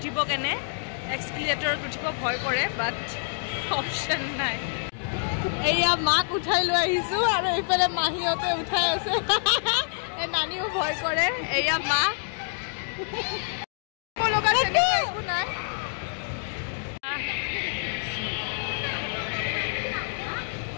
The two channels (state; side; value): silent; right; digital silence